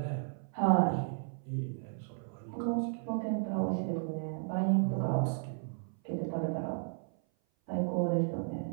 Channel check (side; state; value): left; silent; 55 dB below the other